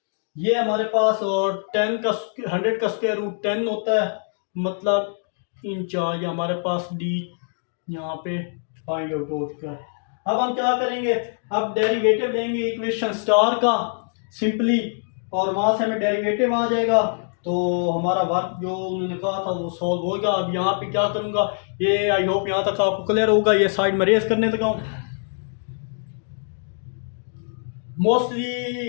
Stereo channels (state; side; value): silent; right; digital silence